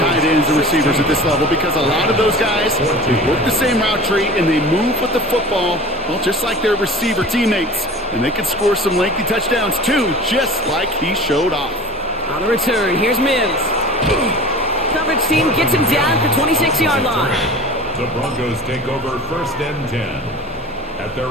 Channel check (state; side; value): normal; both; correlation 0.39